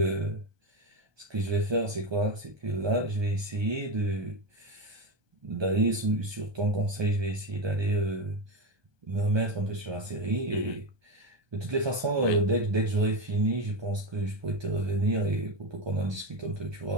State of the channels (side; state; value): left; late; 1.2 ms